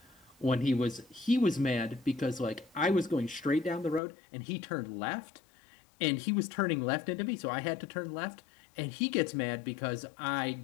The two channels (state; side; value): drops out; right; at 4.0 s